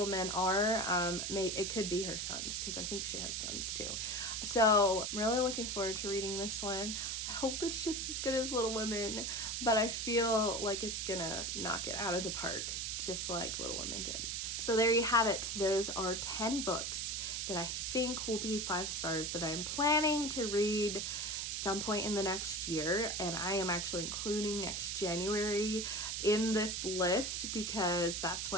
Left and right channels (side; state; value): right; noise; hiss, 2 dB below the sound